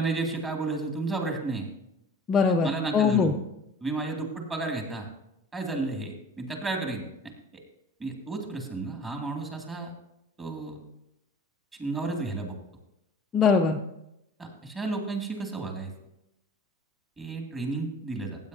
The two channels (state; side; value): normal; both; correlation 0.46